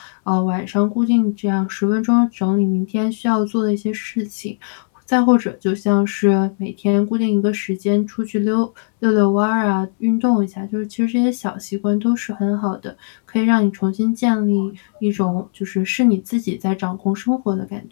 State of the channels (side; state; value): right; silent; 67 dB below the other